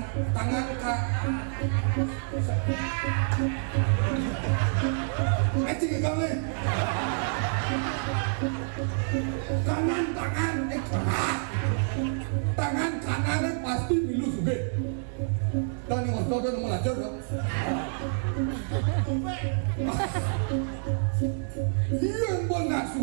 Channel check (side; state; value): left; silent; digital silence